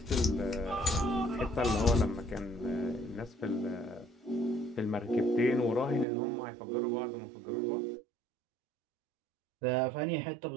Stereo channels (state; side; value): drops out; left; at 6.1 s